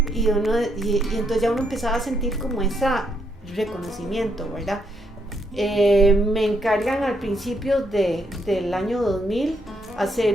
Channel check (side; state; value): both; normal; correlation 0.75